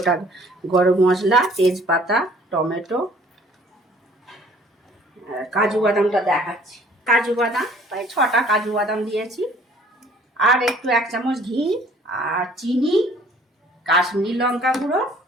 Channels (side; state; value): both; normal; correlation 0.56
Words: গরম মশলা, তেজপাতা, টমেটো, কাজু বাদামটা দেখাচ্ছি। কাজু বাদাম প্রায় 6টা কাজু বাদাম দিয়েছি। আর একটু 1 চামচ ঘি, আর চিনি, কাশ্মীরি লঙ্কা গুঁড়ো,